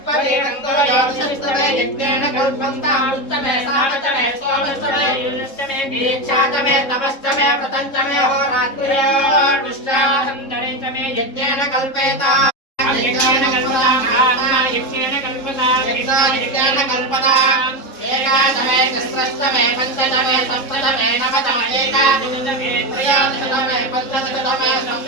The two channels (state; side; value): late; right; 3.7 ms